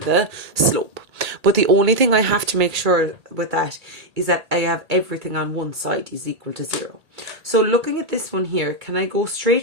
slope. But the only thing I have to make sure with that is that I have everything on one side is equal to 0. So looking at this one here, can I go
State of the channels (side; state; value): left; late; 2.3 ms